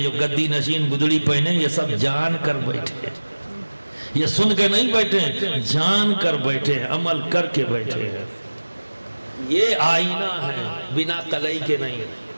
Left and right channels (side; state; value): both; inverted; correlation -1.00